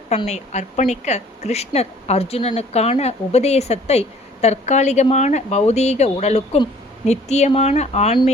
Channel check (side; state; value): both; normal; correlation 0.54